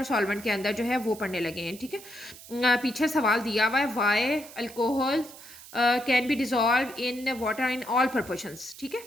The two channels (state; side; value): noise; right; hiss, 17 dB below the sound